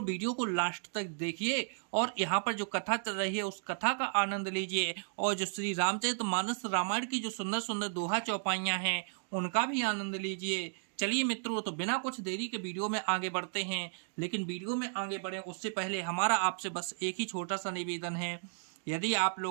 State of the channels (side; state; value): left; silent; digital silence